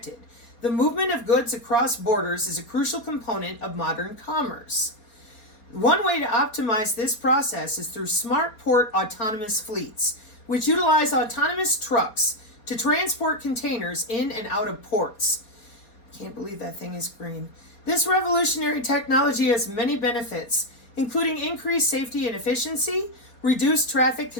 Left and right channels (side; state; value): right; late; 4.2 ms